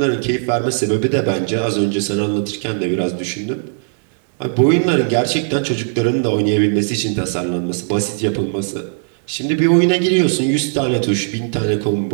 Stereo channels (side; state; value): left; silent; digital silence